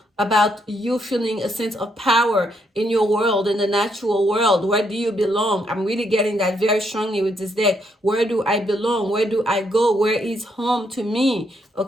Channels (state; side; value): normal; both; correlation 0.75